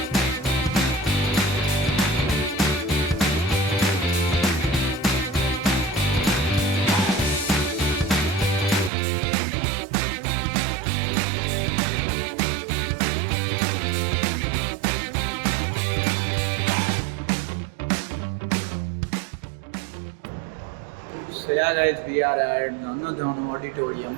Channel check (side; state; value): left; drops out; at 8.9 s